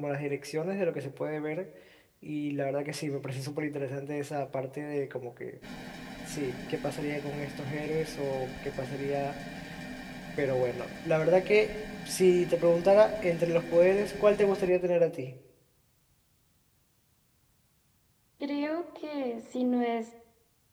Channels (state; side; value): identical; both; correlation 1.00